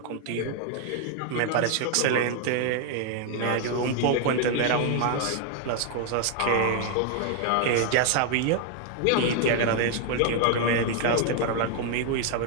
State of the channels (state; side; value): different; both; correlation 0.00